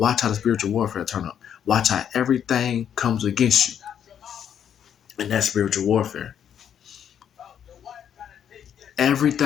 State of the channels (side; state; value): right; quieter; 9.0 dB